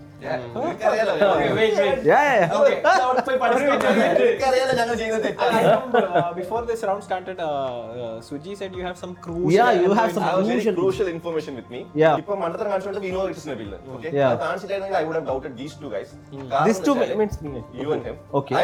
നിനക്കറിയാലോ ഞങ്ങൾ ചെയ്യുന്നത് തെറ്റാണ്. Before this round started, Suji said you have some Yeah, you have some I have very crucial crucial information with me. Yeah. ഇപ്പൊ മണ്ടത്തരം കാണിച്ചുകൊണ്ട് we know it is Nabil. Okay? Yeah. അത് കാണിച്ചിട്ടായിരുന്നെങ്കിൽ I would have doubted these 2 guys. These two means me. You and him. Okay.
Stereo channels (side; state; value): both; identical; correlation 1.00